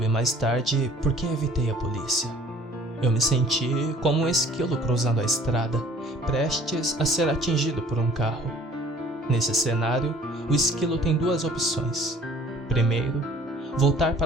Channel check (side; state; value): both; normal; correlation 0.52